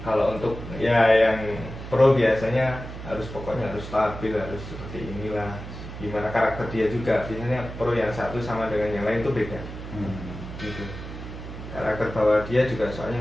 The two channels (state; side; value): noise; right; hum, 10 dB below the sound